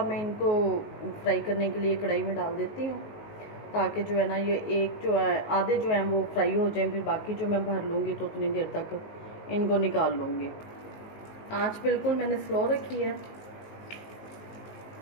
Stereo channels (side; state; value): right; late; 19 ms